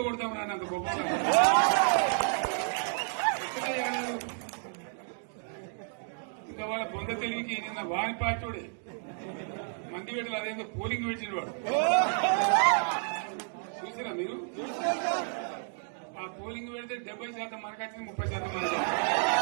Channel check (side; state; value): left; silent; 56 dB below the other